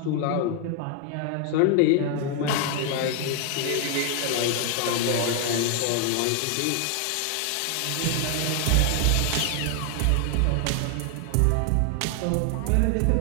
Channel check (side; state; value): both; different; correlation 0.00